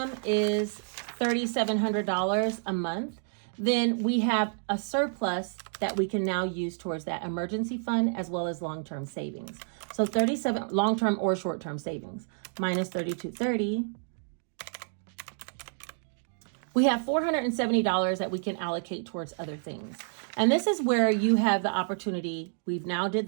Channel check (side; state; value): left; silent; digital silence